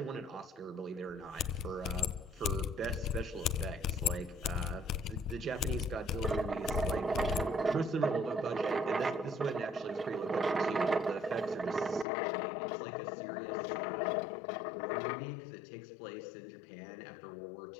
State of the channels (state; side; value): drops out; right; at 12.1 s